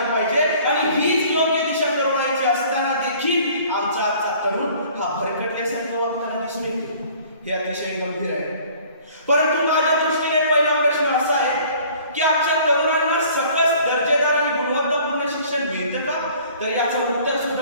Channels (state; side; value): inverted; both; correlation -0.52